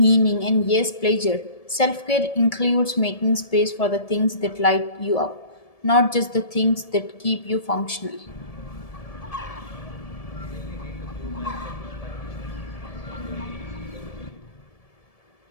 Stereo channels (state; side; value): late; right; 1.7 ms